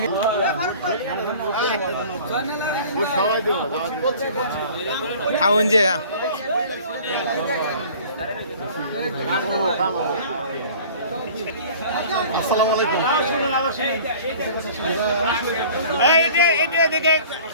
খাওন যে আসসালামু আলাইকুম।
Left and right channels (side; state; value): both; inverted; correlation -0.46